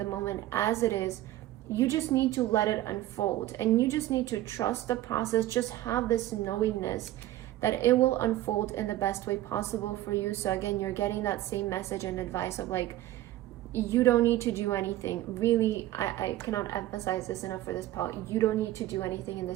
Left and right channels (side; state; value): left; quieter; 15.0 dB